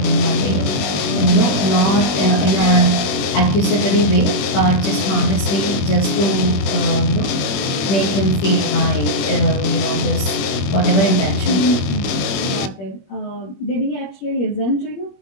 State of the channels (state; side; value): late; right; 21 ms